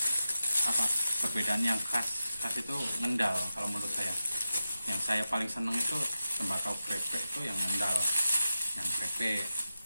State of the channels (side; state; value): both; inverted; correlation -0.91